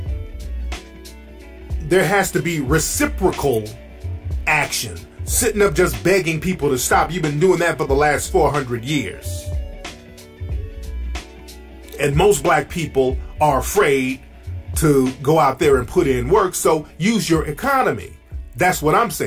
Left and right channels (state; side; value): identical; both; correlation 1.00